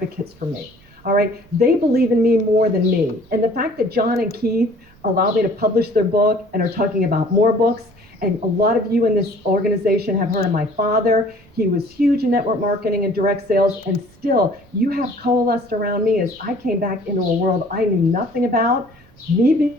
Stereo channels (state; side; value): noise; right; rumble, 28 dB below the sound